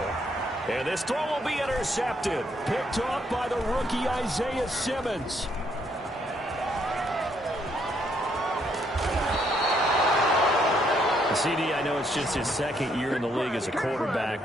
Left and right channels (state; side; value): normal; both; correlation 0.71